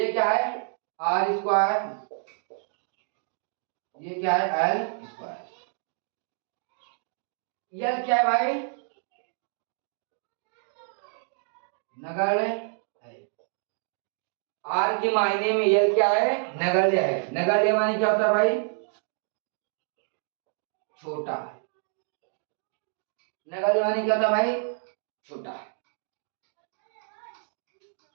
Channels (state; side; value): silent; left; digital silence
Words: क्या है आर स्क्वायर, ये क्या है एल स्क्वायर, एल क्या है भाई नगण्य है। आर के मायने में एल क्या है नगण्य है। नगण्य माने क्या होता है भाई छोटा है। नगण्य माने क्या होता है भाई छोटा है।